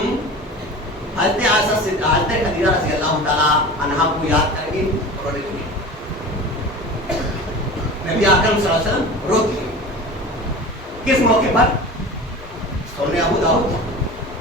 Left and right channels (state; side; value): normal; both; correlation 0.35